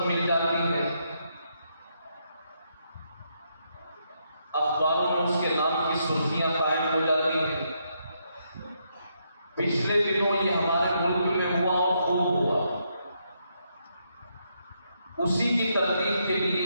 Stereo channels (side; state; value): both; inverted; correlation -0.78